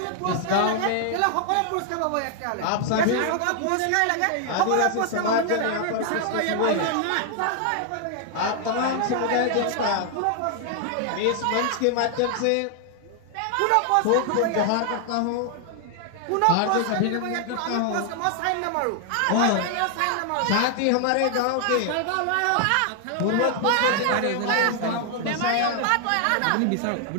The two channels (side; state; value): both; different; correlation 0.00